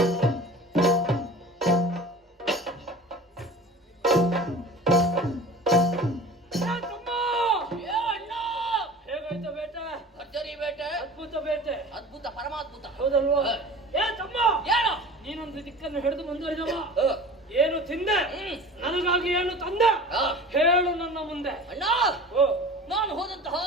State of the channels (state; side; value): normal; both; correlation 0.39